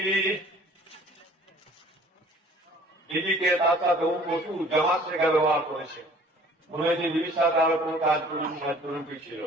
দিদিকে তার সাথে প্রচুর জামাত শেখা ব্যবহার করেছে, মনে হয়েছে দিদির সাথে আরো কোন কাজ করুন ছিল।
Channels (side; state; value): both; normal; correlation 0.52